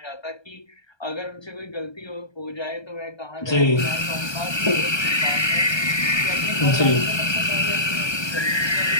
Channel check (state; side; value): late; right; 1.3 ms